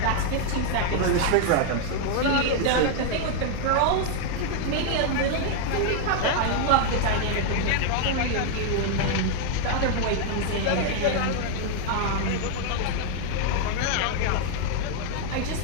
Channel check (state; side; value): different; both; correlation 0.00